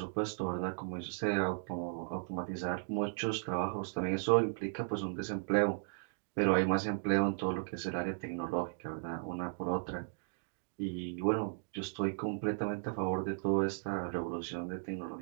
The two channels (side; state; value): left; silent; digital silence